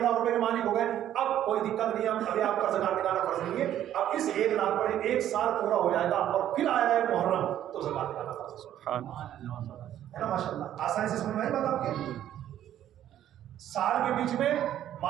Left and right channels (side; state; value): left; quieter; 11.5 dB